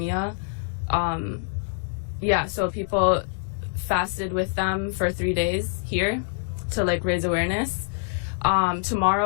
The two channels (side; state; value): right; silent; digital silence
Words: So people fasted with them for 3 days here to like raise awareness.